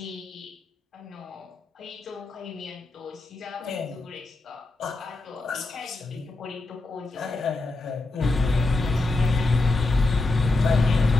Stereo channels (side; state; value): right; quieter; 3.1 dB